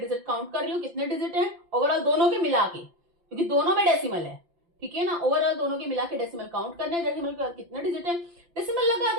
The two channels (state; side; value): late; left; 5.8 ms